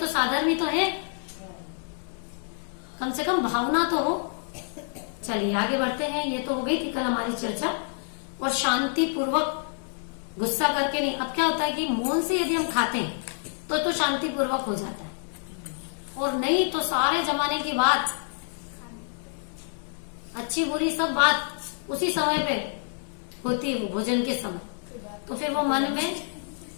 साधर्मी तो है, कम से कम भावना तो हो। चलिए आगे बढ़ते हैं। ये तो हो गई थी कल हमारी चर्चा। और शांति पूर्वक, गुस्सा करके नहीं। अब क्या होता है कि मौन से यदि हम खाते हैं तो शांति पूर्वक हो जाता है, और नहीं तो सारे जमाने की बात, अच्छी बुरी सब बात उसी समय पे होती है, वो भोजन के समय। तो फिर वो मन में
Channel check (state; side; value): silent; right; 60 dB below the other